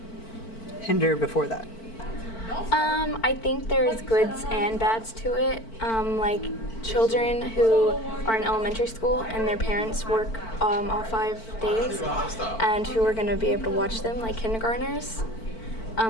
hinder before that? I think there's goods and bads to it. Like children who are in elementary school and their parents work all 5 days and who are going to be able to watch them like kindergartners.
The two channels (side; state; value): right; late; 4.5 ms